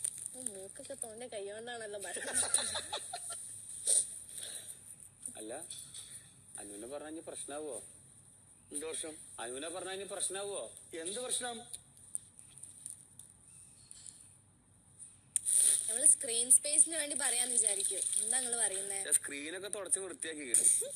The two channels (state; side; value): identical; both; correlation 1.00